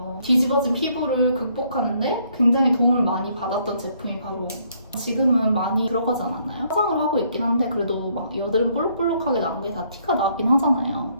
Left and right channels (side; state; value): both; inverted; correlation -0.68